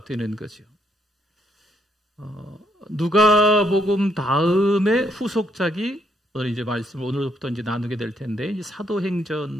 되는 거죠. 누가복음 다음에 후속작이 오늘 이제 말씀을 오늘부터 이제 나누게 될 텐데 이제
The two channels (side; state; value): both; normal; correlation 0.73